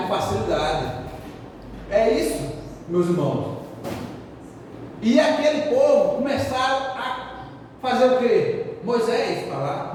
facilidade. É isso, meus irmãos. E aquele povo começaram a fazer o quê? Moisés para lá,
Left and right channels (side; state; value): both; identical; correlation 1.00